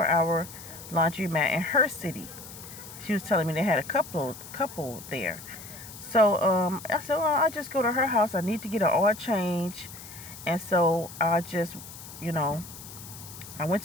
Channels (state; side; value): noise; left; hiss, 15 dB below the sound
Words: laundromat in her city. She was telling me they had a couple there. So I said, well, I'll just go to her house. I need to get an oil change. And so I just, I went